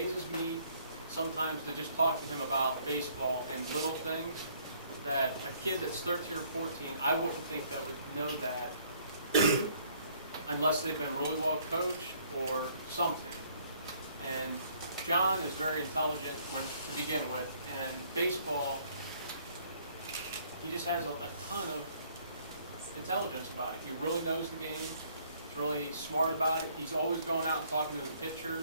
me sometimes to just talk to him about baseball and little things that a kid that's 13 or 14, I wouldn't think that would know that unless they've been really well coached or something. And John is very intelligent to begin with, and baseball, he just has a ton of intelligence about it. He really knows the game. He's really smart about it. He's always going out and talking to the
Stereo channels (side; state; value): both; inverted; correlation -0.62